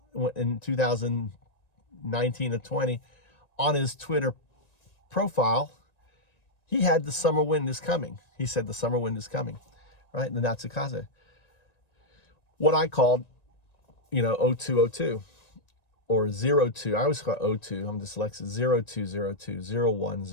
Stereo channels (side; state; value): right; late; 1.9 ms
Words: in 2019 or 20, on his Twitter profile, he had the summer wind is coming. He said the summer wind is coming, right? The Natsukaze. What I called, 0202 or 02. I always call it 02. I'm dyslexic. 0202,